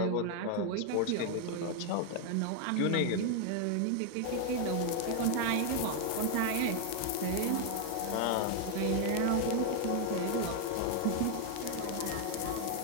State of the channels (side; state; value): both; different; correlation 0.00